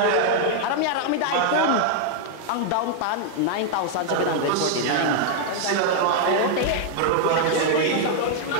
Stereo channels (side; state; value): both; different; correlation 0.00